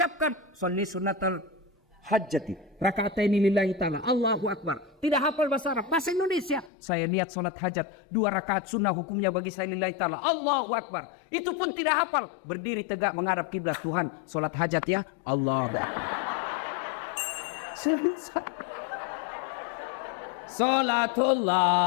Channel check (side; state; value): right; drops out; at 6.7 s